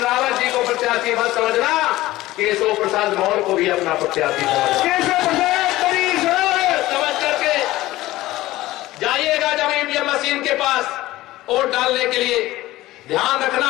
रावत जी को प्रत्याशी मत समझना, केशव प्रसाद मौर्य को भी अपना प्रत्याशी समझ करके जाइएगा जब ईवीएम मशीन के पास वोट डालने के लिए। ध्यान रखना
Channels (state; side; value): quieter; right; 17.0 dB